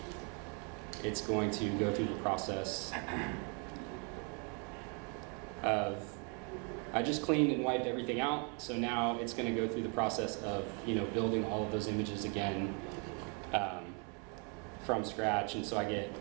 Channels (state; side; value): quieter; left; 36.4 dB